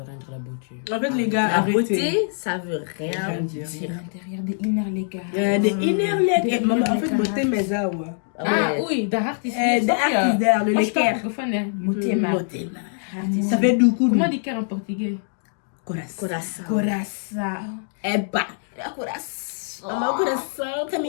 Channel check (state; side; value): silent; right; digital silence